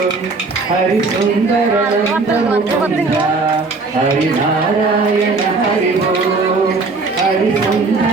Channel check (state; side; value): quieter; left; 3.9 dB